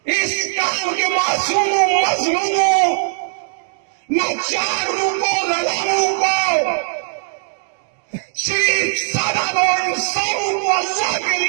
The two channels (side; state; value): left; silent; digital silence